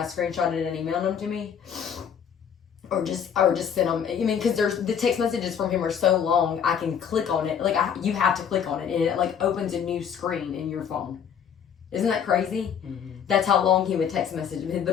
screenshotted it and emailed them to me. Or just send them. I mean, because the text messages from him are so long, I can click on it. Like you have to click on it, and it like opens a new screen in your phone. Isn't that crazy? Mm-hmm. That's how long he would text message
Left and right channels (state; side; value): quieter; right; 7.9 dB